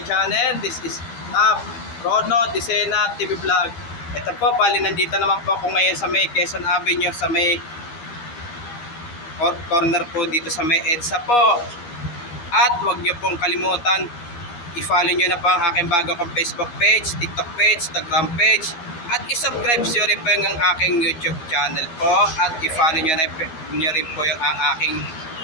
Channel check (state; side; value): late; right; 12 ms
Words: channel. This is Rono Disena TV Vlog. Ito po, bali nandito naman po ako ngayon sa may Quezon Avenue, sa may corner po dito sa may EDSA po. At huwag nyo pong kalimutan, i-follow nyo na po ang aking bago kong Facebook page, TikTok page, Instagram page. At i-subscribe nyo rin po yung aking YouTube channel po. At i-follow nyo rin po yung aking